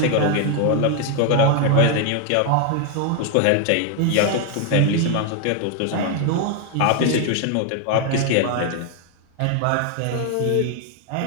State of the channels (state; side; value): different; both; correlation 0.01